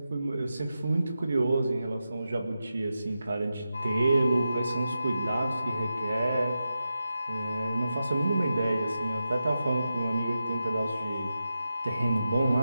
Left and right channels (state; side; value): inverted; both; correlation -0.90